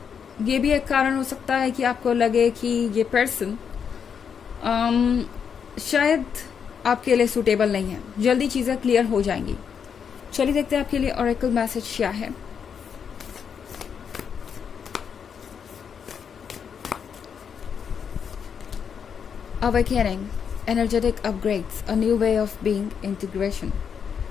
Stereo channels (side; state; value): right; quieter; 7.1 dB